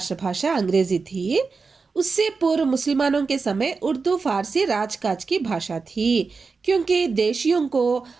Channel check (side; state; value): left; quieter; 4.6 dB